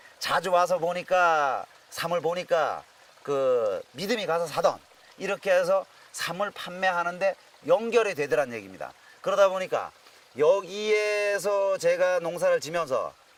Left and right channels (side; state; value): both; identical; correlation 1.00